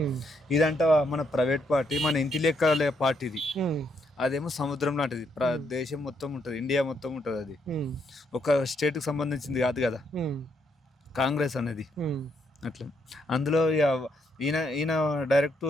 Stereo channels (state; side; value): normal; both; correlation 0.75